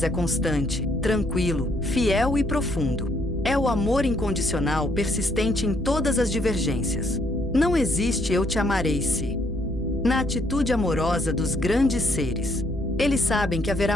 é constante, tranquilo, fiel e profundo. É o amor incondicional persistente em todas as divergências. Não existe eu te amarei se. Na atitude amorosa dos grandes seres. Eles sabem que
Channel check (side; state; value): both; normal; correlation 0.70